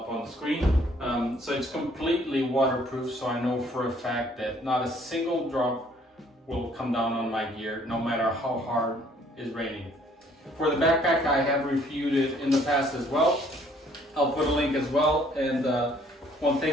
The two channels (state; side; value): normal; both; correlation 0.61